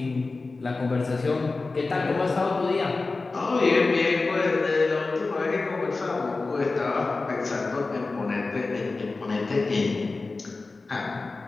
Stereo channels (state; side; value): quieter; right; 3.7 dB